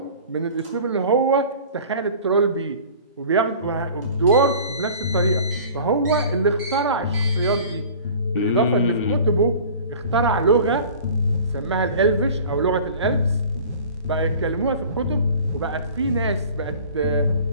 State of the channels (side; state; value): both; inverted; correlation -0.44